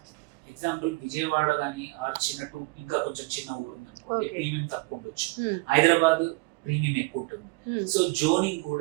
ఎగ్జాంపుల్ విజయవాడ కానీ ఆర్ ఇంకా కొంచెం చిన్న ఊరు ఉందనుకోండి, ప్రీమియం తక్కువ ఉండొచ్చు. హైదరాబాద్ ప్రీమియం ఎక్కువ ఉంటుంది. సో జోనింగ్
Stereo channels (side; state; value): left; quieter; 25.8 dB